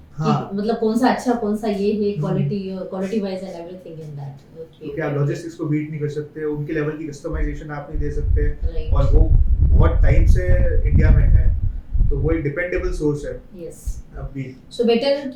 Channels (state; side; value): identical; both; correlation 1.00